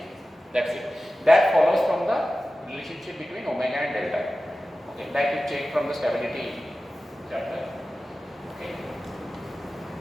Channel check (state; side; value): normal; both; correlation 0.95